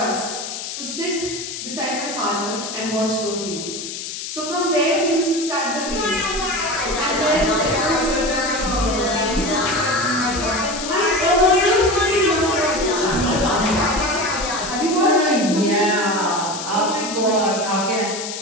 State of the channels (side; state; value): left; noise; hiss, 7 dB below the sound